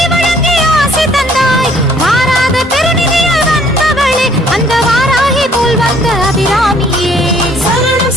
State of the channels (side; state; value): both; normal; correlation 0.61